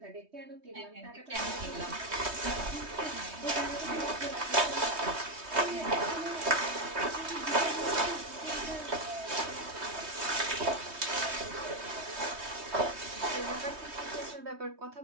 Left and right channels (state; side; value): late; left; 3.2 ms